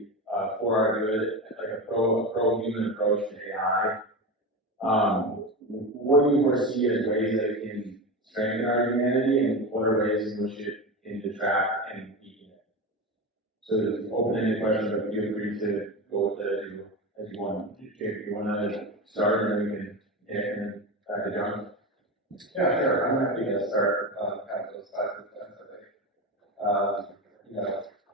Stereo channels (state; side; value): normal; both; correlation 0.21